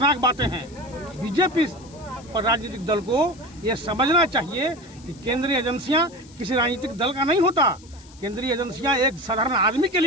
बातें हैं। बीजेपी और राजनीतिक दल को ये समझना चाहिए कि केंद्रीय एजेंसियां किसी राजनीतिक दल का नहीं होता। केंद्रीय एजेंसियां एक साधारण आदमी के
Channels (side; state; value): left; noise; hiss, 24 dB below the sound